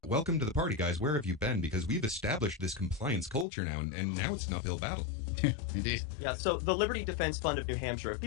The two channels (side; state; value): right; drops out; at 3.5 s